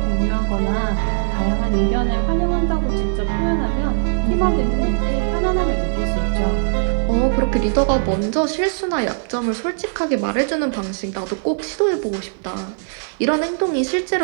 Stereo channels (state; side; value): silent; left; 59 dB below the other